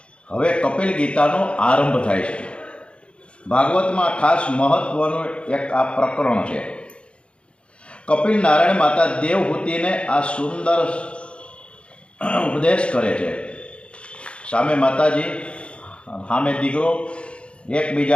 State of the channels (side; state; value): right; late; 0.058 ms